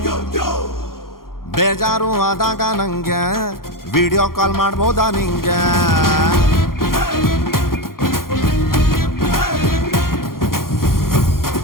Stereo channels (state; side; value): late; right; 0.92 ms